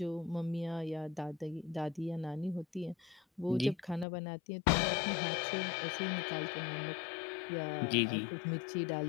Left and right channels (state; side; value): drops out; right; at 4.0 s